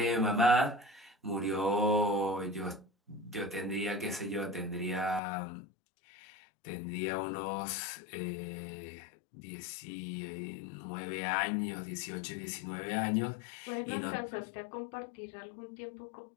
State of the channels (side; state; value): right; drops out; at 5.2 s